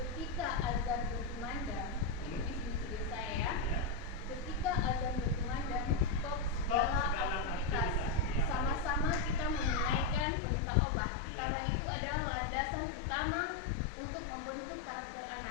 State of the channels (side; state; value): right; drops out; at 10.2 s